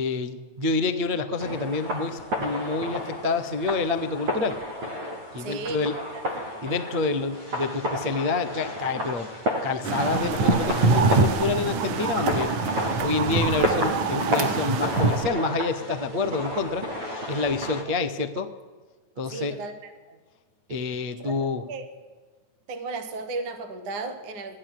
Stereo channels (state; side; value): late; left; 9.2 ms